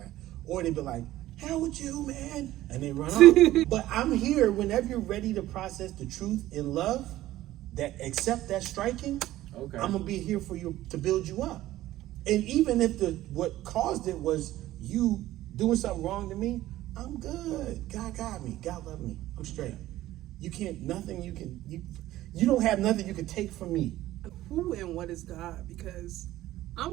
or they be like, hell with you, man, and they run off. But I'm here whenever you're ready to process the truth in love, that accept that striking. Okay. I'm gonna be here for you to build you up. And even if what caused it was you doing something wrong to me, I'm good. God got me. God love me. I'm straight. You don't have nothing you can take from me. Who and what is God? Because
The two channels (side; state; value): left; quieter; 15.2 dB